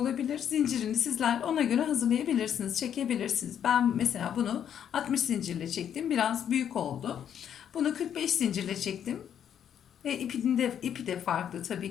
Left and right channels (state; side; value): quieter; right; 9.2 dB